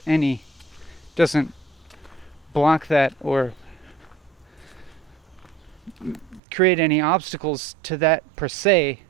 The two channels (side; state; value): left; drops out; at 6.4 s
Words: block that or create any obstacles to that per se,